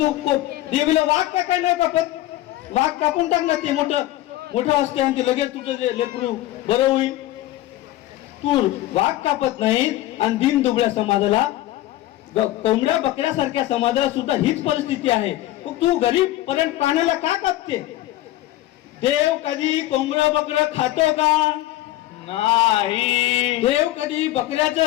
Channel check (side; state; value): right; quieter; 15.4 dB